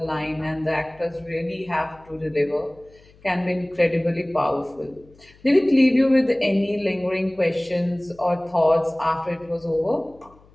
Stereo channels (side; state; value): left; noise; hum, 27 dB below the sound